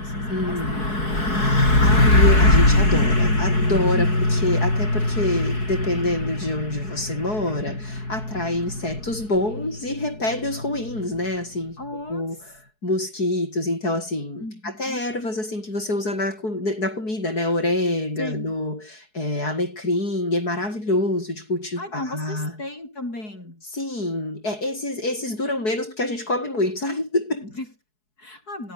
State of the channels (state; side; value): late; right; 4.7 ms